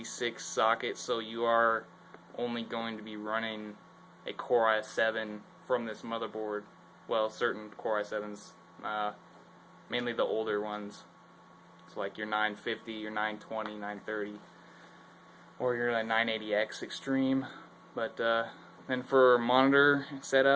socket, so you are only going to be running a Core i7 from this motherboard. Well, certain Core i7s, mainly the older ones. It's like your 950, your 920, 930, or your 980X Extreme. But then for monitor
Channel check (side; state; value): both; identical; correlation 1.00